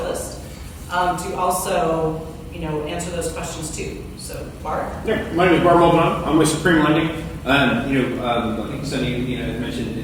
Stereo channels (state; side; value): identical; both; correlation 1.00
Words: to also, answer those questions too. So, Bart? Yeah, my name is Bart Muldoon. I'm with Supreme Lending. I think Sunny, mentioned